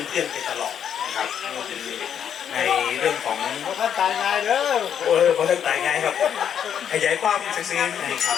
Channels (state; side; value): quieter; right; 8.7 dB